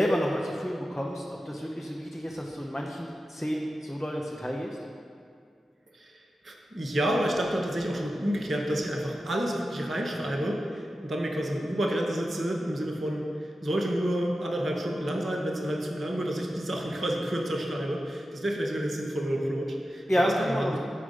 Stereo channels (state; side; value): normal; both; correlation 0.92